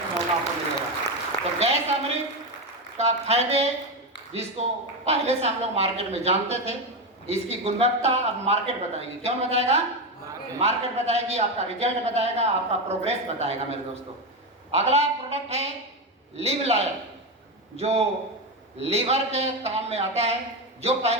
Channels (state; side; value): normal; both; correlation 0.13